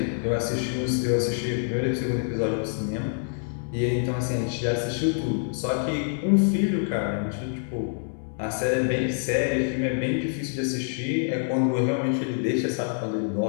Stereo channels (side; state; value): right; silent; 61 dB below the other